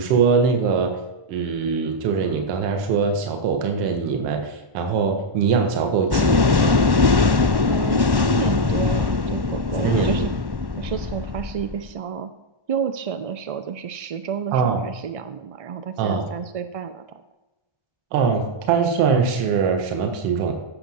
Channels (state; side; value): late; left; 1.1 ms